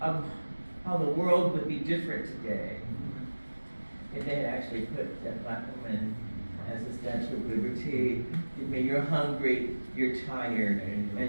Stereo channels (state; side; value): inverted; both; correlation -1.00